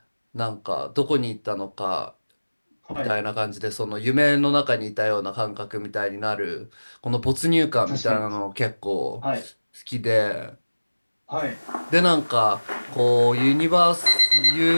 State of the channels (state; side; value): inverted; both; correlation -1.00